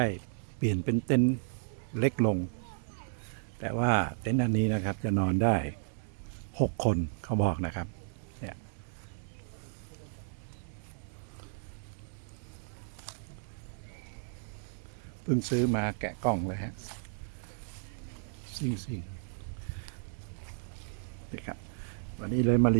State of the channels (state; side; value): silent; left; digital silence